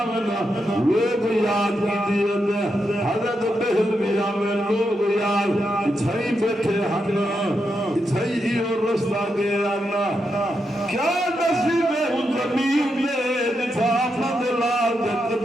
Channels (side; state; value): both; normal; correlation 0.84